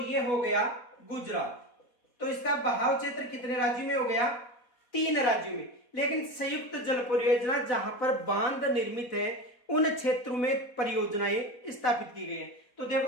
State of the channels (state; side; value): late; right; 4.2 ms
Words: ये हो गया गुजरात। तो इसका बहाव क्षेत्र कितने राज्यों में हो गया? 3 राज्यों में। लेकिन संयुक्त जल परियोजना जहां पर बांध निर्मित है उन क्षेत्रों में परियोजनाएं स्थापित की गई हैं। तो